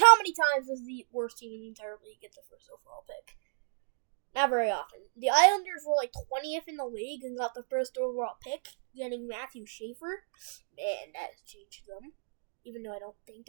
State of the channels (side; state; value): left; silent; digital silence